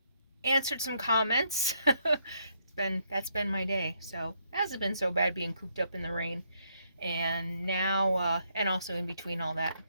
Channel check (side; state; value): both; inverted; correlation -0.73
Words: some comments. That's been my day. So it hasn't been so bad being cooped up in the rain. And now, and also in between all that,